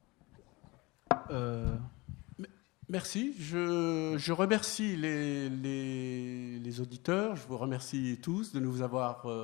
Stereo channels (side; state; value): right; quieter; 23.7 dB